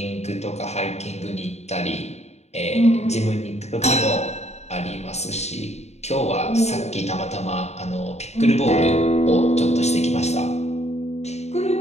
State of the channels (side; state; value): right; late; 0.32 ms